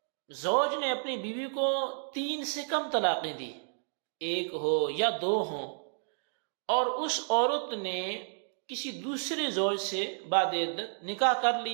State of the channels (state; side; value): silent; left; digital silence